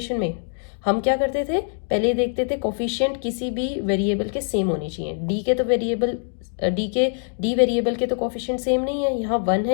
में. हम क्या करते थे, पहले देखते थे कोफिशिएंट किसी भी वेरिएबल के सेम होने चाहिए. डी के तो वेरिएबल डी वेरिएबल के तो कोफिशिएंट सेम नहीं है, यहाँ 1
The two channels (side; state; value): right; silent; 63 dB below the other